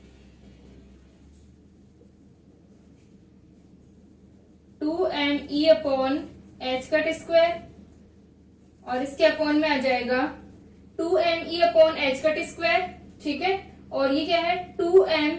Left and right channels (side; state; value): both; identical; correlation 1.00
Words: e upon H cut square और इसके अपॉन में आ जाएगा 2me upon H cut square. ठीक है, और ये क्या है 2m